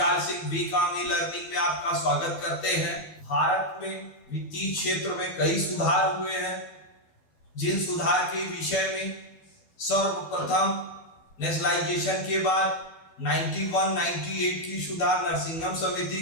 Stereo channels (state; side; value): late; right; 12 ms